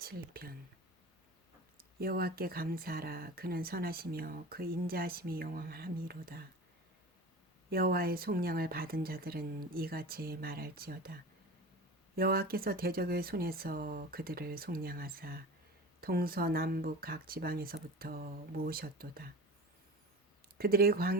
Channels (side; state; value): both; normal; correlation 0.33